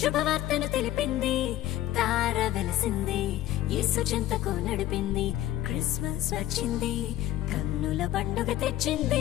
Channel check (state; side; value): quieter; right; 13.8 dB